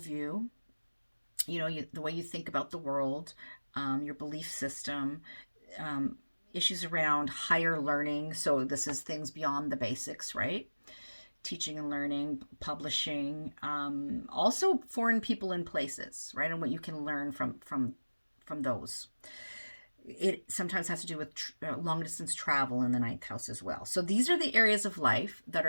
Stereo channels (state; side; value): inverted; both; correlation -1.00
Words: you know, the way you think about the world, your belief system, issues around higher learning. So this is things beyond the basics, right? Teaching and learning, publishing, also foreign people and places, right? And what you can learn from those. It sometimes has to do with long distance travel in the 9th house as well. So these are the areas of life that